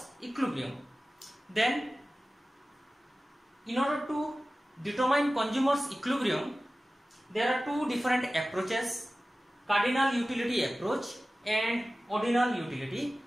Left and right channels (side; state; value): both; normal; correlation 0.96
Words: equilibrium. Then in order to determine consumer's equilibrium, there are two different approaches: cardinal utility approach and ordinal utility